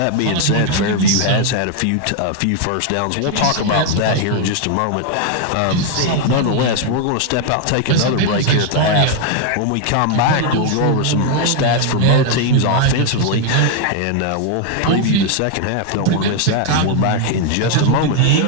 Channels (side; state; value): both; different; correlation 0.01